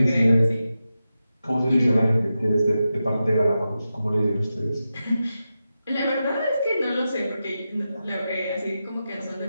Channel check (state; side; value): inverted; both; correlation -0.91